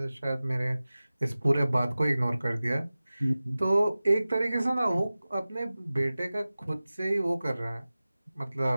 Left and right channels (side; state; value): both; inverted; correlation -0.97